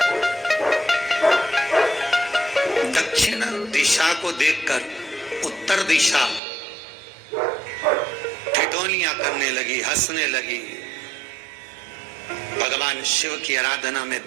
दक्षिण दिशा को देखकर उत्तर दिशा ठिठोलियां करने लगी, हंसने लगी। भगवान शिव की आराधना में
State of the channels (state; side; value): drops out; left; at 6.4 s